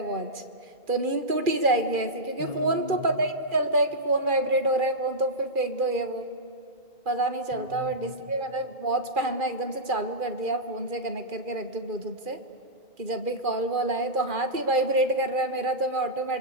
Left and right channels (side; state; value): left; late; 2.4 ms